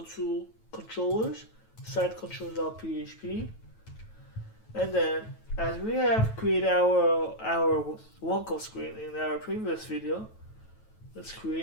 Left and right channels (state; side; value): late; right; 9.2 ms